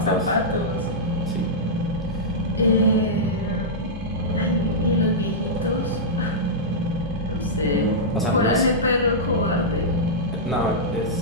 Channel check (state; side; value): normal; both; correlation -0.11